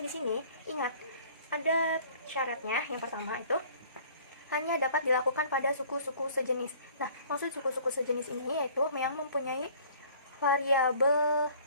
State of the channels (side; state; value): both; inverted; correlation -0.52